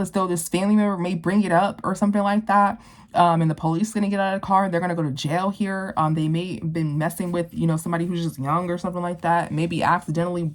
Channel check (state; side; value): identical; both; correlation 1.00